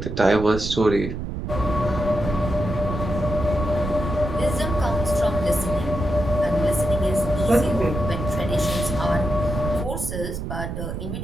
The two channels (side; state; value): right; noise; rumble, 5 dB below the sound